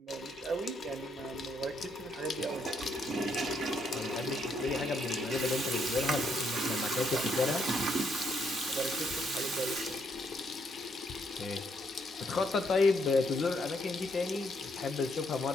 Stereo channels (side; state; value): both; normal; correlation 0.74